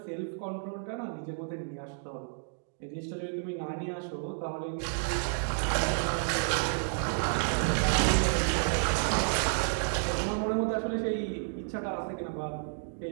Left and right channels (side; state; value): left; silent; digital silence